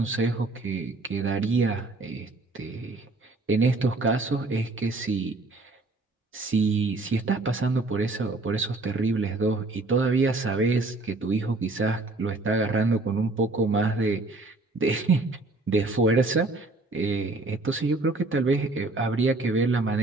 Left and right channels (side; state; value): left; quieter; 3.2 dB